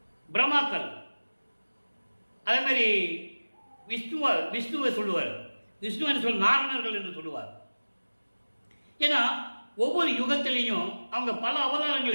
பிரம்மாக்கள். அதே மாதிரி விஷ்ணுவை சொல்லுவார். விஷ்ணு என்று நாரணர்கள் என்று சொல்லுவார். ஏன்னா ஒவ்வொரு யுகத்திலையும் அவங்க பல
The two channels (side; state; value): both; inverted; correlation -1.00